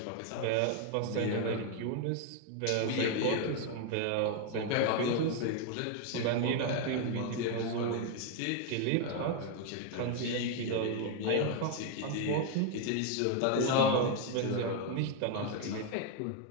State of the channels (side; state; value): both; different; correlation 0.01